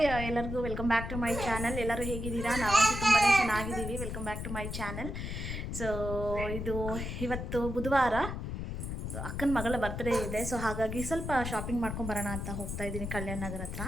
ಎಲ್ಲರಿಗೂ welcome back to my channel. ಎಲ್ಲರೂ ಹೇಗಿದ್ದೀರಾ? ನಾವಂತೂ ತುಂಬಾ ಚೆನ್ನಾಗಿದ್ದೀವಿ. Welcome back to my channel. So ಇವತ್ತು ಬುಧವಾರ, ಅಕ್ಕನ ಮಗಳ ಬರ್ತ್ಡೇ ಇದೆ. ಸೊ ಹಾಗಾಗಿ ಸ್ವಲ್ಪ ಶಾಪಿಂಗ್ ಮಾಡ್ಕೊಂಬರೋಣ ಅಂತ ಹೋಗ್ತಾ ಇದ್ದೀನಿ ಕಲ್ಯಾಣ ನಗರ ಹತ್ರ.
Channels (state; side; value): noise; left; rumble, 5 dB below the sound